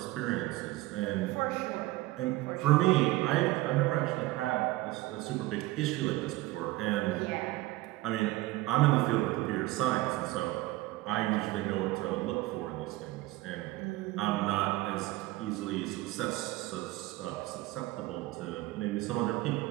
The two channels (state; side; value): quieter; left; 18.5 dB